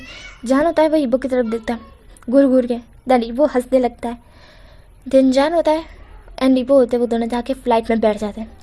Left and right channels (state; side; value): identical; both; correlation 1.00